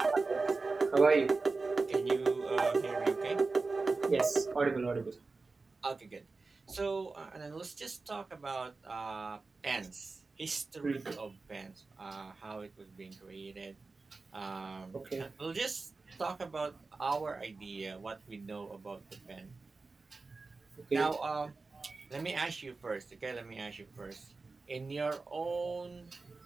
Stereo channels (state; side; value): quieter; left; 3.9 dB